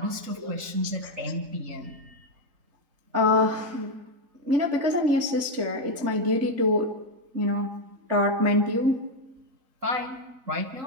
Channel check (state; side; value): late; left; 3.8 ms